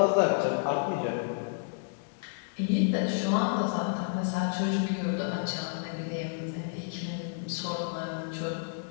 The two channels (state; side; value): silent; right; digital silence